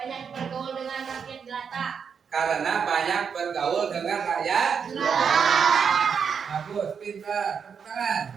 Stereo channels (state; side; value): quieter; left; 6.6 dB